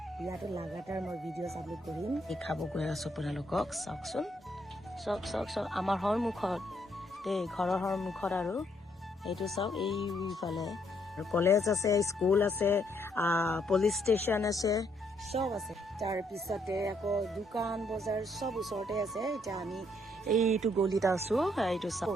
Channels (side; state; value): both; normal; correlation 0.72